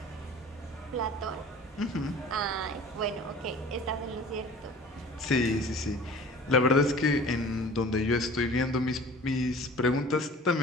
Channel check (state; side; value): normal; both; correlation 0.44